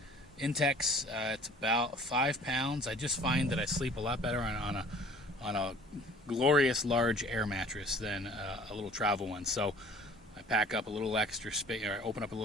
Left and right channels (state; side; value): normal; both; correlation 0.50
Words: It's about 5 pounds. I just find that I sleep a lot better on a glorious large air mattress than a little travel one. So I pack up a little extra space, or I open up a